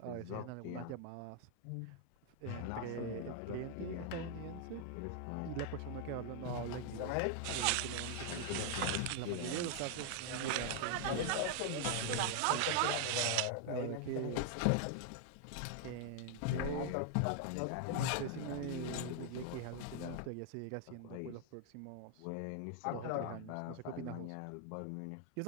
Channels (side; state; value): both; different; correlation 0.00